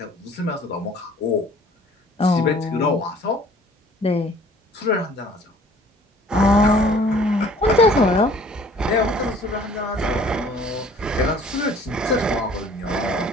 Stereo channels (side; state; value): both; normal; correlation 0.53